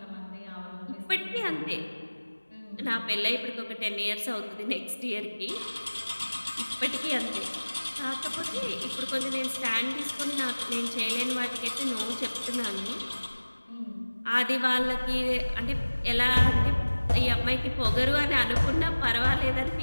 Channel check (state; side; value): inverted; both; correlation -1.00